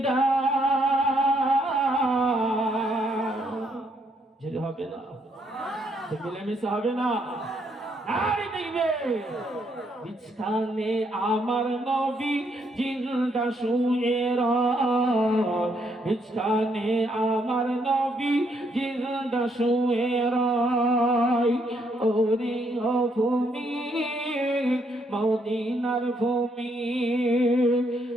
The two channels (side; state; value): both; normal; correlation 0.73